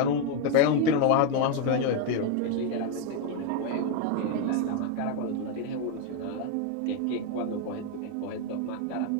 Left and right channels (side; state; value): both; different; correlation 0.01